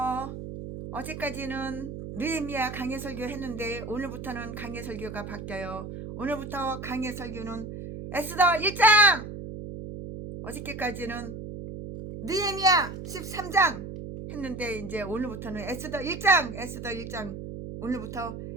어제까지는 느헤미야 강의 설교 했는데 오늘부터는 강의 설교가 바뀌어요. 오늘부터 강의 설교는 에스더 1장! 어저께까지는 느헤미야 13장 했는데 이제 오늘부터는 에스더 1장 오늘부터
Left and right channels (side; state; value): right; noise; hum, 9 dB below the sound